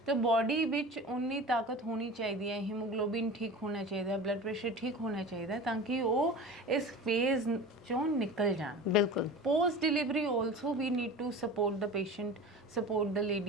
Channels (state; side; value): normal; both; correlation 0.35